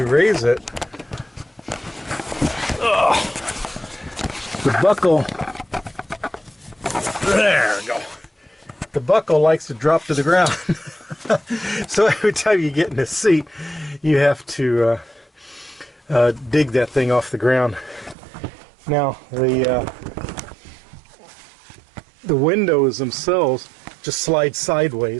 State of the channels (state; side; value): drops out; left; at 18.2 s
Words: raise it. The buckle, there we go. The buckle likes to drop to the ground. So every time you get in the seat, you have to dig that thing off the ground. Now the windows themselves just slide